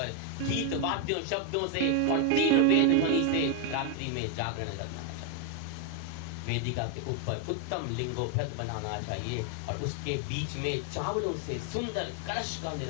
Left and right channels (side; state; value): both; different; correlation 0.01